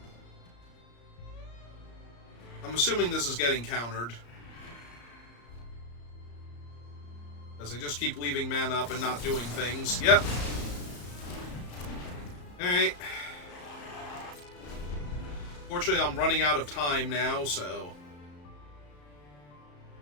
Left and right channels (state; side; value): late; right; 34 ms